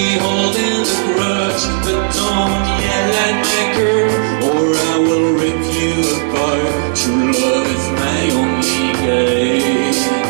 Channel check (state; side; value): silent; left; digital silence